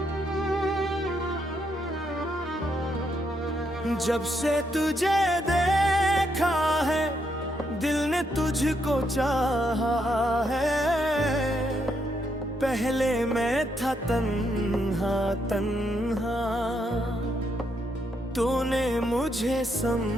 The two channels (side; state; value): both; normal; correlation 0.77